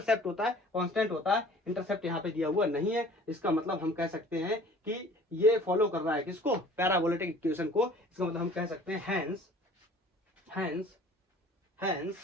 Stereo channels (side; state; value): both; normal; correlation 0.48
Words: होता है, कांस्टेंट होता है, इंटरसेप्ट यहाँ पे दिया हुआ नहीं है। इसका मतलब हम कह सकते हैं कि ये फॉलो कर रहा है किसको, पैराबोलिक इक्वेशन को। इसका मतलब हम कह सकते हैं hence